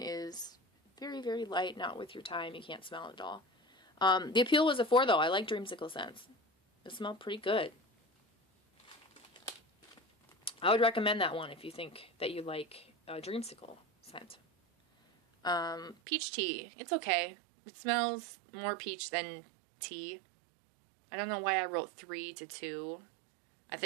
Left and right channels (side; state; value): left; drops out; at 16.0 s